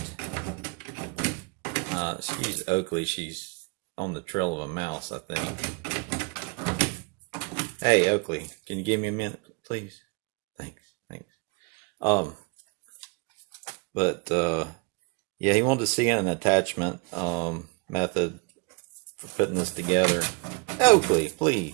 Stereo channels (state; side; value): quieter; left; 30.6 dB